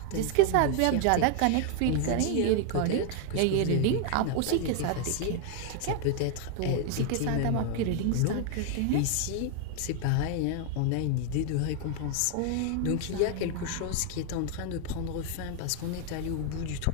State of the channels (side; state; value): both; different; correlation 0.00